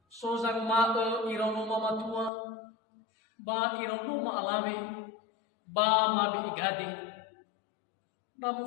Sozang ma irano mamatua. Ba irano ma alave. Ba mabi igade.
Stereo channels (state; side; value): drops out; right; at 2.3 s